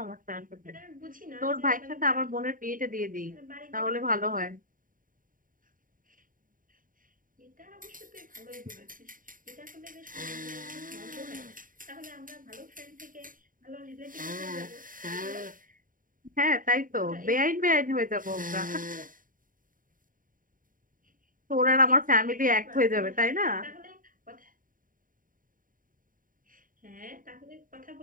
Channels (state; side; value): late; left; 0.40 ms